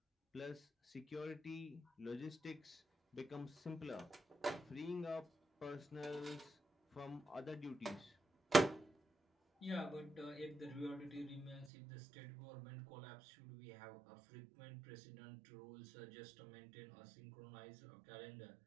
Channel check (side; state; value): left; drops out; at 11.7 s